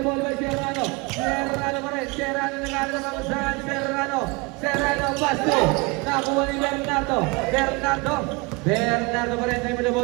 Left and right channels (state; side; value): quieter; left; 27.1 dB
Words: ball by Serrano pa rin, Serrano nag-aaral ng kamusahan, Serrano, Basto, nakuha ni Bernardo pa rin, dribble